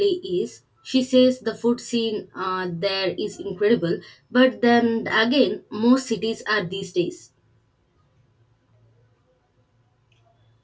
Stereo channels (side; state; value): both; identical; correlation 1.00